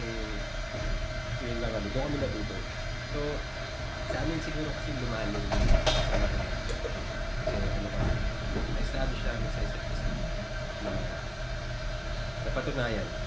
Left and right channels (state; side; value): identical; both; correlation 1.00